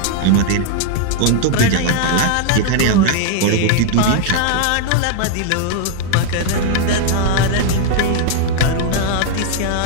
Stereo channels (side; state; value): both; different; correlation 0.00